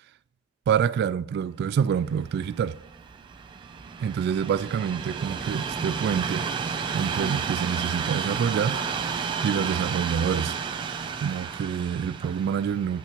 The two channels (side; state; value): left; quieter; 6.9 dB